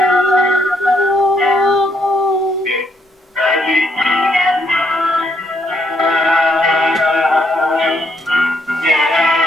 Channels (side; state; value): both; normal; correlation 0.73